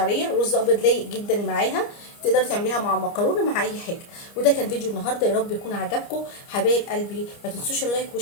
رز ابيض لايق جدا معاها، تقدري تعمليها مع مكرونه مع اي حاجه. وده كان فيديو النهارده، يا رب يكون عجبكم حبايب قلبي. ما تنسوش اللايك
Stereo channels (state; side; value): late; right; 29 ms